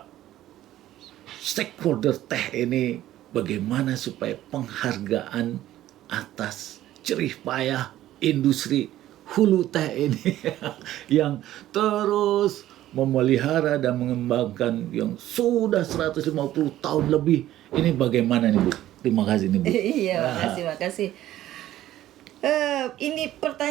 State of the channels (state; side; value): quieter; left; 13.7 dB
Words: stakeholder teh ini, bagaimana supaya penghargaan atas jerih payah industri hulu teh ini yang terus memelihara dan mengembangkan yang sudah 150 tahun lebih ini bagaimana nih Bu? Terima kasih nih Bu. Iya, makasih. Ini